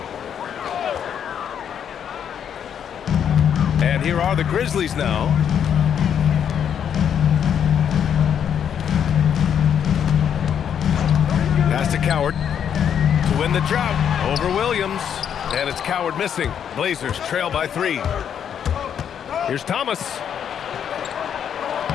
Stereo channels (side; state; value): right; quieter; 8.6 dB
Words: And here are the Grizzlies now. Pass to Coward to win the drought over Williams. And it's Coward missing. Blazers trail by 3. Here's Thomas.